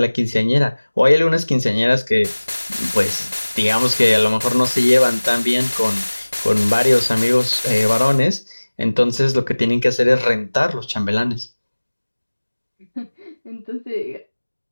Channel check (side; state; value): both; inverted; correlation -1.00